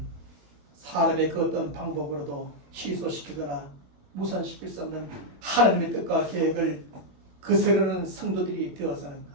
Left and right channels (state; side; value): late; left; 21 ms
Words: 사람의 그 어떤 방법으로도 취소시키거나 무산시킬 수 없는 하나님의 뜻과 계획을 거스르는 성도들이 되어서는